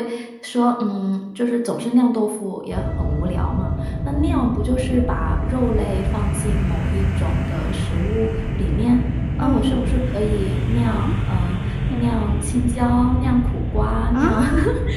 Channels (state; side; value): identical; both; correlation 1.00